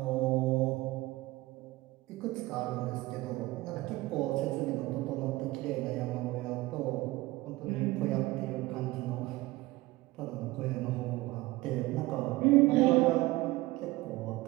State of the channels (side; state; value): left; quieter; 19.5 dB